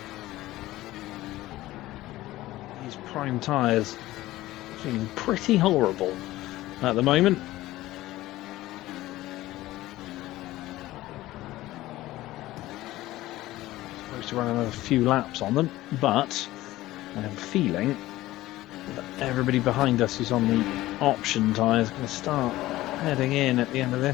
These prime tyres feeling pretty horrible at the moment. Supposed to run another few laps on them, but I have a feeling that everybody behind us who's on the option tyres is going to start heading in at the end of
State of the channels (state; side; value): quieter; right; 16.6 dB